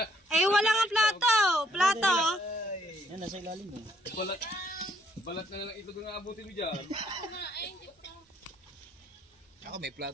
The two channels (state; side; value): normal; both; correlation 0.68